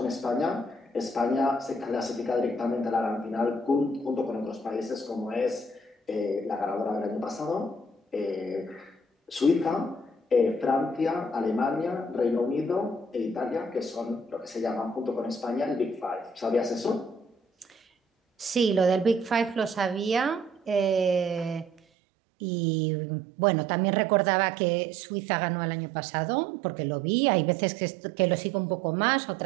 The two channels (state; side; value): drops out; left; at 21.8 s